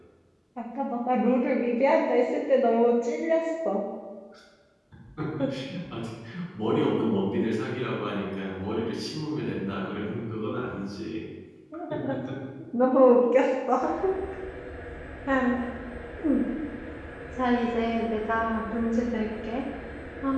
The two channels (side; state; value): both; identical; correlation 1.00